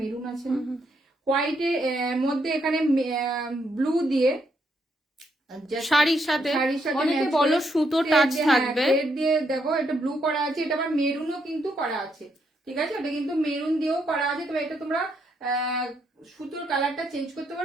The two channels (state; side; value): normal; both; correlation 0.76